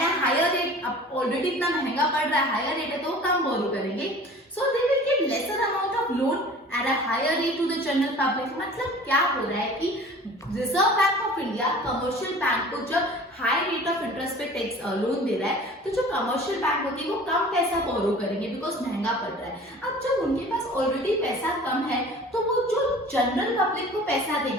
अ हायर रेट। अब ऑलरेडी इतना महंगा पड़ रहा है, हायर रेट है तो वो कम बोरो करेंगे, so they will give lesser amount of loan at a higher rate to the general public. मतलब क्या हो रहा है कि reserve bank of India commercial bank को जब हाई रेट ऑफ इंटरेस्ट पे टैक्स लोन दे रहा है, तो जो कमर्शियल बैंक होती है वो कम पैसा बोरो करेंगे बिकॉज महंगा पड़ रहा है। अब जब उनके पास ऑलरेडी पैसा कम है तो वो जो जनरल पब्लिक को पैसा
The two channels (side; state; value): both; normal; correlation 0.44